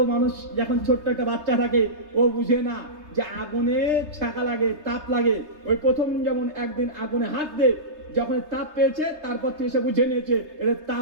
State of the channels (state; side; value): late; left; 3.3 ms